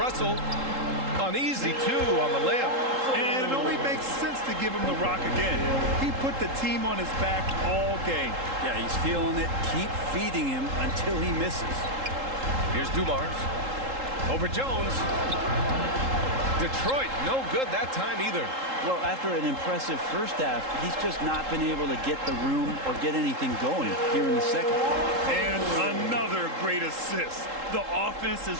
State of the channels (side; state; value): left; late; 3.8 ms